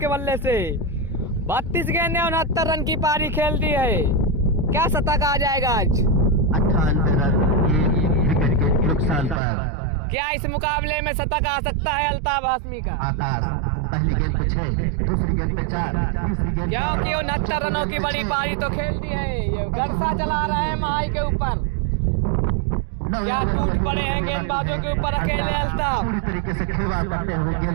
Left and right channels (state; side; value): drops out; left; at 9.4 s